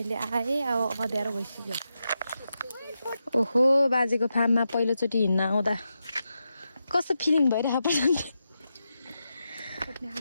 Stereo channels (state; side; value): inverted; both; correlation -0.88